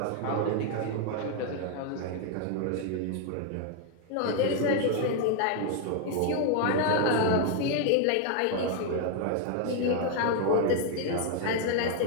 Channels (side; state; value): both; different; correlation 0.00